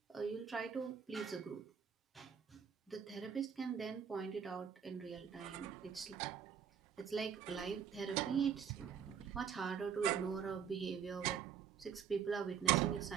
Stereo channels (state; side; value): quieter; left; 7.7 dB